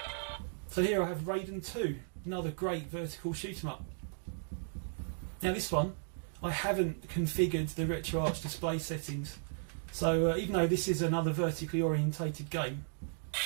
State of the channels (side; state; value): left; silent; digital silence